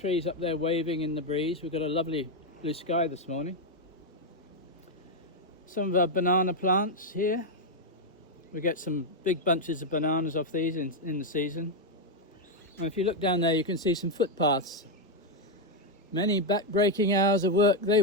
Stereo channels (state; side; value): normal; both; correlation 0.02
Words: up there waving in the breeze. We've got a lovely blue sky this morning. Some of our banana plants here. We get some big bunches of bananas off these in the season. And if you look down there, you can see some footpaths. Many back-breaking hours of work they